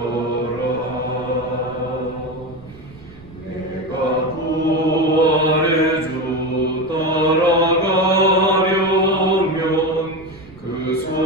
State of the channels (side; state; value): right; noise; rumble, 22 dB below the sound